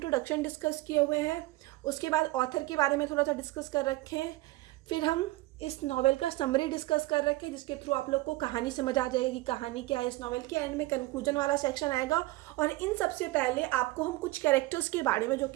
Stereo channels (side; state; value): left; quieter; 19.5 dB